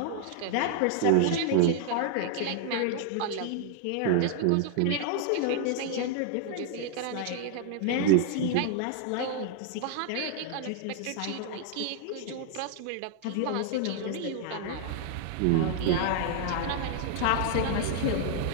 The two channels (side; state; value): both; different; correlation 0.00